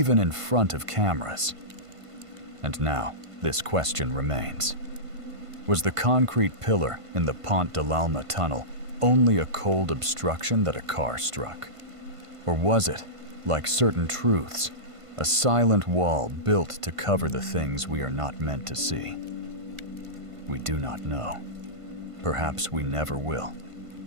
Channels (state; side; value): late; left; 1.5 ms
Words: in front of cameras. And now, this question remains. Was the concrete pillar in the Pont de l'Alma tunnel only a cold obstruction that a car struck? Or was it, like certain truths, a silent wall built to cover the things we are not meant to see? We do not know. Perhaps we never will.